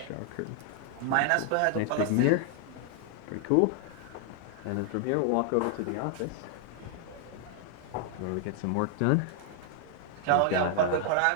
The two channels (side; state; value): both; different; correlation 0.00